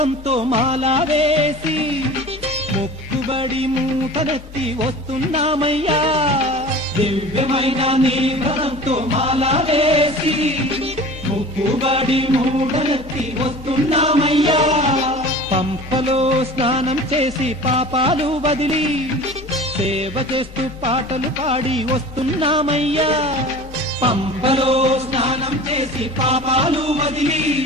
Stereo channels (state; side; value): normal; both; correlation 0.39